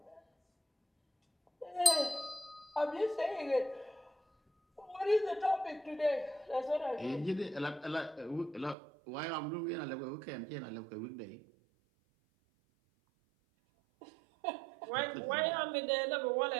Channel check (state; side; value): drops out; left; at 8.8 s